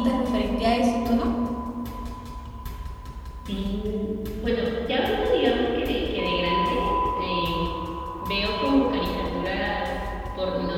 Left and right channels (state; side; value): identical; both; correlation 1.00